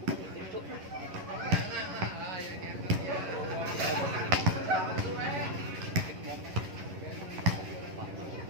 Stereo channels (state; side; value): late; left; 11 ms